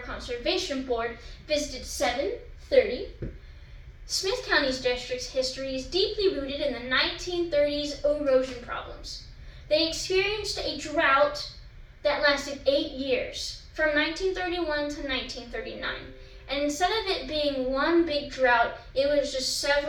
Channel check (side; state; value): both; identical; correlation 1.00